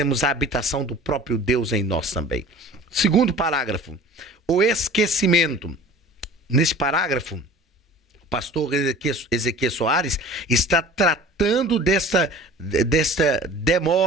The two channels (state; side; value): normal; both; correlation 0.43